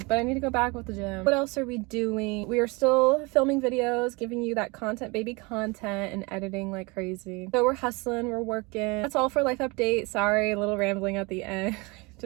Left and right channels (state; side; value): quieter; left; 26.8 dB